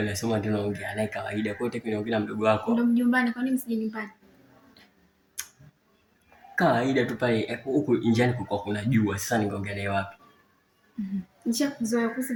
nasema tunaongea naye kawaida. Kwa hiyo tunaongea na mdogo wako. Ndio mjumbani, kwa nini msije nyumbani? Kawaida tu pale huko njiani kulikuwa kuna jua. Sasa ningeongea naye wapi? Nishakuzoea kuhusu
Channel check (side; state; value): both; identical; correlation 1.00